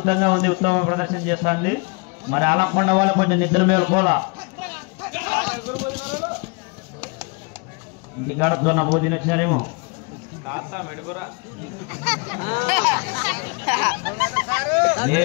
ఉంది, ఉత్తమ ప్రదర్శన చేస్తుంది. మరి ఆలకొండ వాళ్ళు కొంచెం నిద్ర మేలుకోలా. ఇంటికాడ దొన్న భోజనం వచ్చినారేమో.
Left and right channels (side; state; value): right; quieter; 30.9 dB